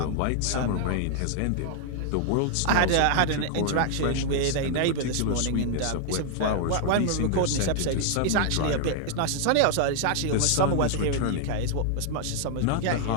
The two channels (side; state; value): both; different; correlation 0.00